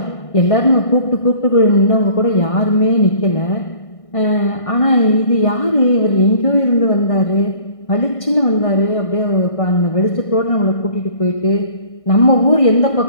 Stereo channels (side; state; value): right; late; 1.6 ms